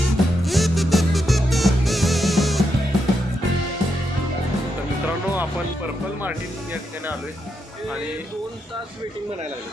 आपण पर्पल मार्टिन या ठिकाणी आलोय आणि 2 तास वेटिंग म्हणायला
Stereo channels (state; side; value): normal; both; correlation 0.82